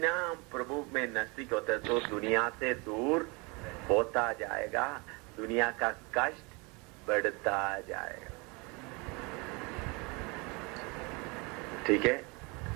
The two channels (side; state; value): left; quieter; 28.5 dB